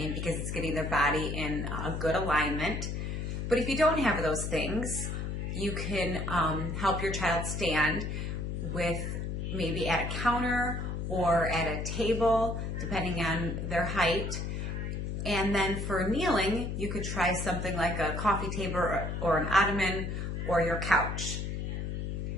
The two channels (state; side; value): noise; left; hum, 3 dB below the sound